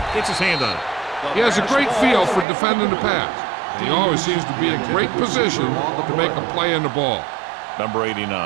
Gets his hand on it. He has a great feel for defending the pass. And he always seems to be in great position to make a play in the ball. Number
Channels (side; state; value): left; drops out; at 2.5 s